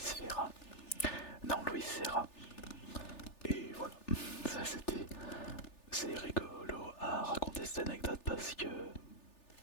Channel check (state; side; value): late; right; 3.4 ms